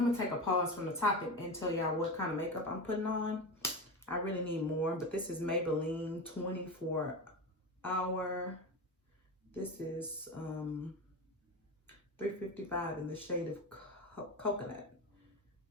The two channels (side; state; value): both; normal; correlation 0.22